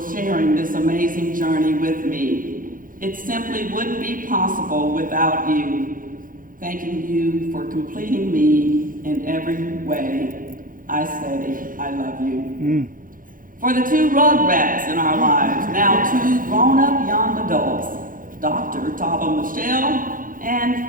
sharing this amazing journey with me. It simply wouldn't be possible without you. Thanking you for completing me in every way. I say I love you. For the two rugrats in our lives, now two grown-up young adults, Dr. Tava Michelle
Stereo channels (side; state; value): left; late; 0.40 ms